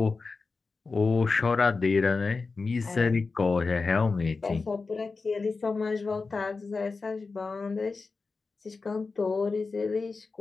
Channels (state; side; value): quieter; right; 4.2 dB